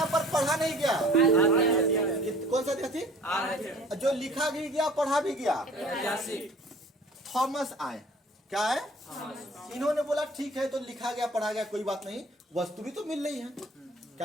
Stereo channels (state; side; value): normal; both; correlation 0.48